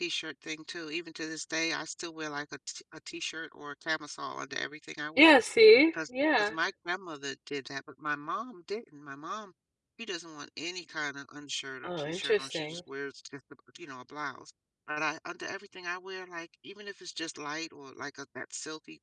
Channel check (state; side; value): identical; both; correlation 1.00